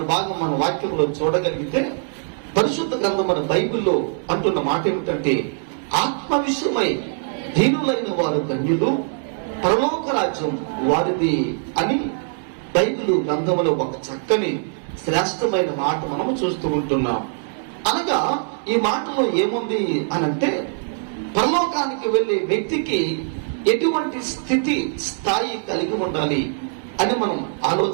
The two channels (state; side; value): silent; left; digital silence